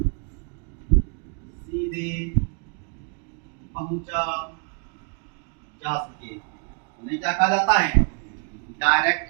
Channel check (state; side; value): quieter; left; 38.8 dB